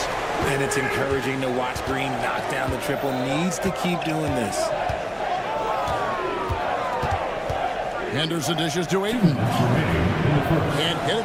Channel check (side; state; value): both; identical; correlation 1.00